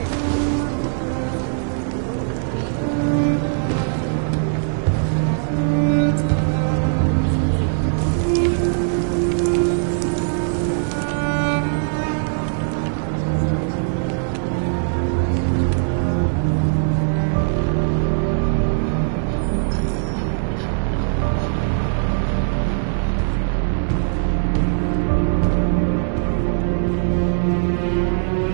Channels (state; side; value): silent; left; 65 dB below the other